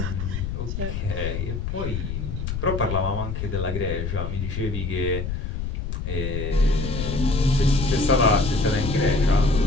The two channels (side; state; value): left; noise; rumble, 4 dB below the sound